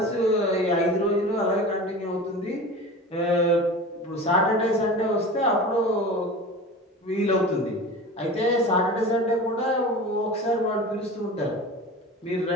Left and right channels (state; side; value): normal; both; correlation 0.34